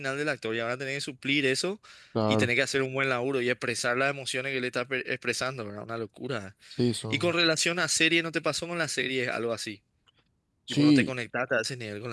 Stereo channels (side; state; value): both; identical; correlation 1.00